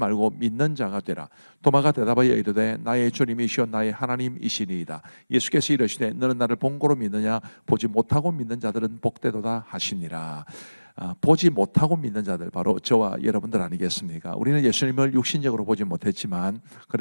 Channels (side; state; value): both; inverted; correlation -1.00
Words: 믿는 자가 되라. 도마가 대답하여 이르되 나의 주님이시오 나의 하나님이시니이다. 예수께서 이르시되 너는 나를 본고로 믿느냐 보지 못하고 믿는 자들은 복되도다 하시니라. 보지 못하고 믿는 자들, 바로 저와 여러분들 아니겠습니까? 우리는 예수님을 육신적으로 보지 못했지만